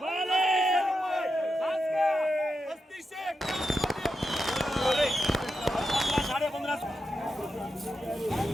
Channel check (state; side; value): normal; both; correlation 0.88